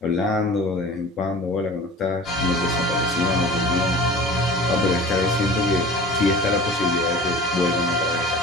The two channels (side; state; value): both; normal; correlation 0.40